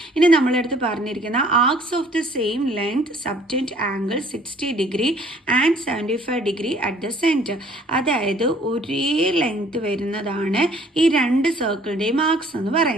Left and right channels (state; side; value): normal; both; correlation 0.57